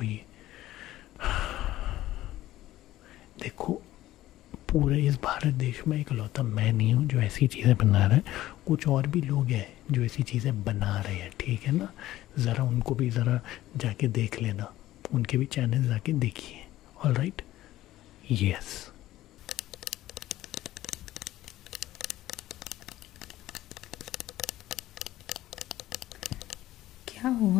देखो पूरे इस भारत देश में इकलौता मैं नहीं हूँ जो ऐसी चीज़ें बना रहा है, कुछ और भी लोग हैं जो ऐसी चीज़ें बना रहे हैं, ठीक है ना? ज़रा उनको भी ज़रा जाके देख लेना, उनके भी चैनल जाके देखिए। All right, yes. क्या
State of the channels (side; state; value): right; quieter; 15.0 dB